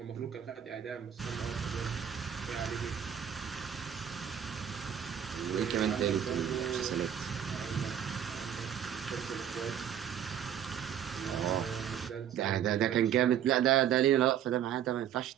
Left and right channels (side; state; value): left; quieter; 9.4 dB